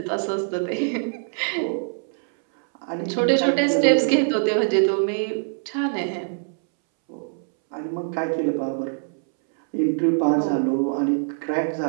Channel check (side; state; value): left; silent; 63 dB below the other